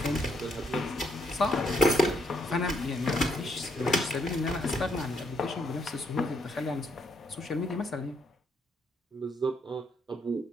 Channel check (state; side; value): normal; both; correlation 0.74